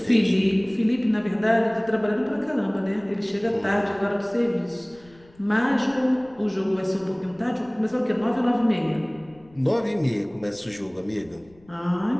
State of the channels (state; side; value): noise; left; rumble, 27 dB below the sound